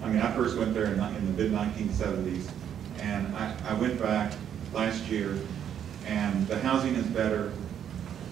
I mean, I first went there in the mid-1970s, and I went back last year, and the housing is better,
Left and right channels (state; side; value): quieter; left; 9.3 dB